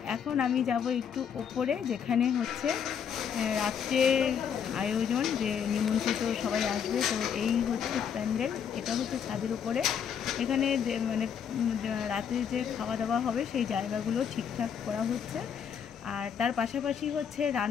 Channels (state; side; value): quieter; right; 7.7 dB